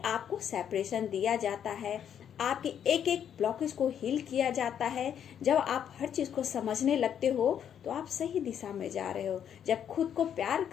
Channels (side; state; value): right; quieter; 9.0 dB